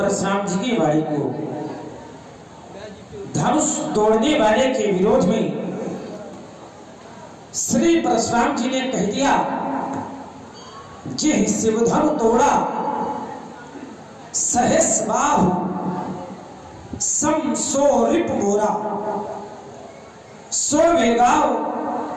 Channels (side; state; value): both; identical; correlation 1.00